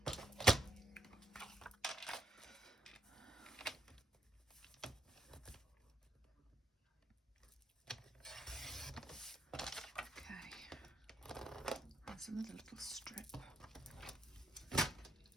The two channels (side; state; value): both; normal; correlation 0.75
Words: Okay. There's another little strip.